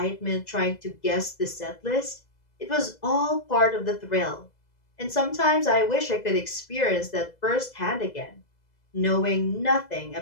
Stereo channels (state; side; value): late; right; 2.0 ms